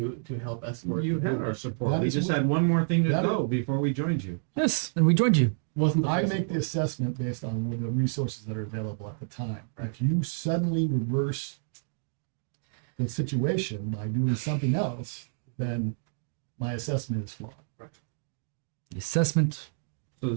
to help escort. You the had our movement. support. That We is just what- had one more thing to that go before we joined you. Yes, and we joined you. Wasn't the I full make the support. assessment based on the resources that are available at the time. If you suddenly reverse the situation by doing something else, then my assessment is flawed. The assessment So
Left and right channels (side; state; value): left; silent; digital silence